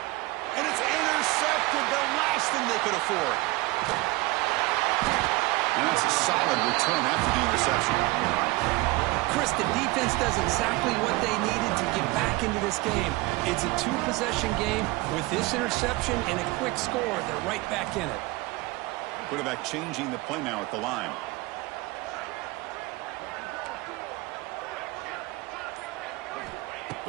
And it's intercepted, the last thing they could afford. And that's a solid return after the interception. Chris, the defense does exactly what they needed to get back into this game. It's a 2-possession game. With this interception and a quick score, they're right back in it. Quarterback changing the play now at the line.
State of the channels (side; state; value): left; quieter; 21.8 dB